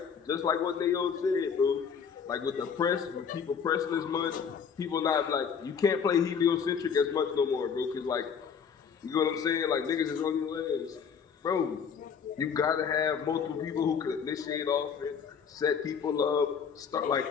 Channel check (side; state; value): right; quieter; 6.7 dB